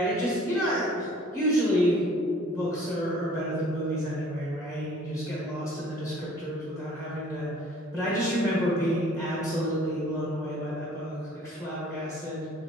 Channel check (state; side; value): normal; both; correlation 0.53